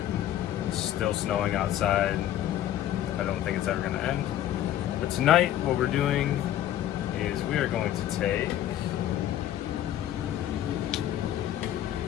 It's still snowing outside. I don't think it's ever gonna end. But tonight what we're doing is we are going to take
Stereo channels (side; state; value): right; quieter; 12.2 dB